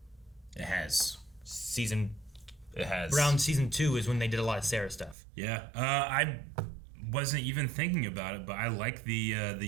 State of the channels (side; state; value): left; drops out; at 5.2 s